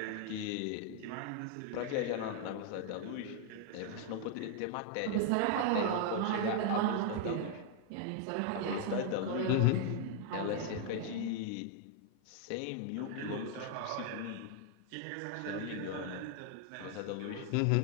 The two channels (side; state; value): both; different; correlation 0.00